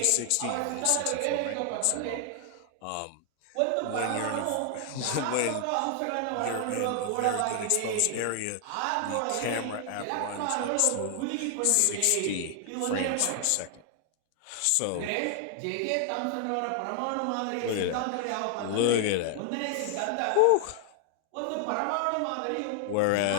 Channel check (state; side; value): different; both; correlation 0.00